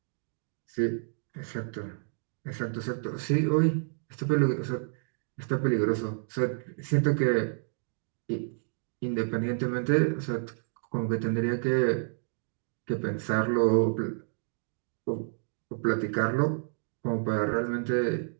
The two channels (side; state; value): left; silent; digital silence